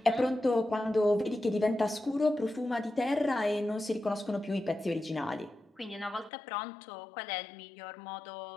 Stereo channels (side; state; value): right; drops out; at 6.3 s